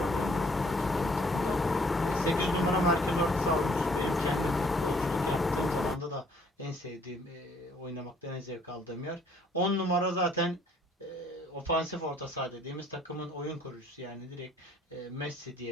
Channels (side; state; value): both; normal; correlation 0.62